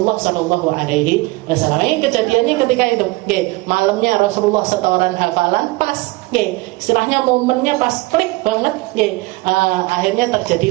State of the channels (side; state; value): left; quieter; 22.3 dB